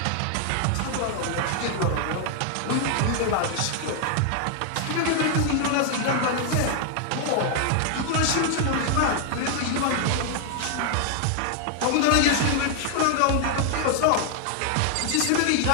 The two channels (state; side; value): different; both; correlation 0.00